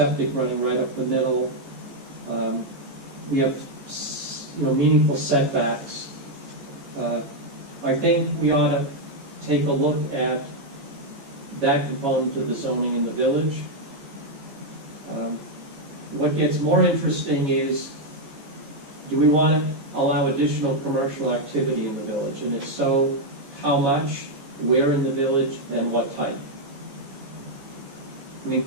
running right up the middle. We have meaningful setbacks. I think we ought to take a look at that component of the zoning in the village. What gets more interesting is, do we want to allow additional commercial activity in the village? And if so, how much, where in the village, and what type?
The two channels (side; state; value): left; late; 14 ms